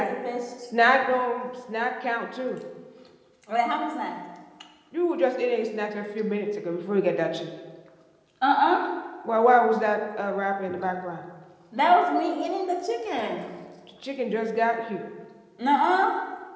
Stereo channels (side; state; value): both; identical; correlation 1.00